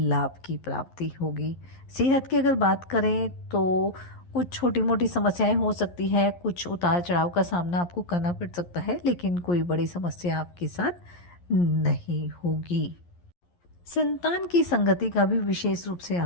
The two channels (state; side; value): late; right; 11 ms